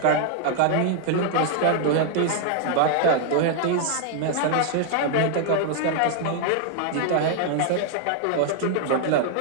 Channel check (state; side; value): different; both; correlation 0.00